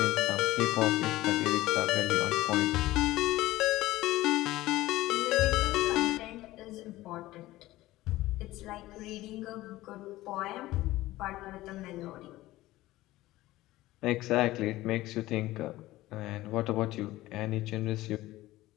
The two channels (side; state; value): right; quieter; 17.1 dB